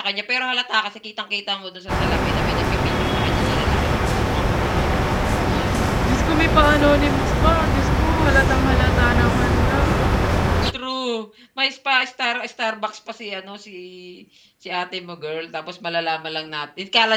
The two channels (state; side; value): identical; both; correlation 1.00